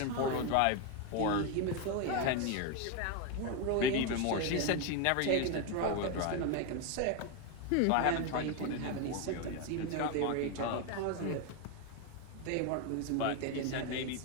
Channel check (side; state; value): both; different; correlation 0.02